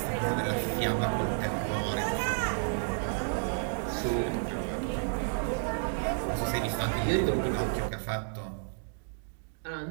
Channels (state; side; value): silent; left; digital silence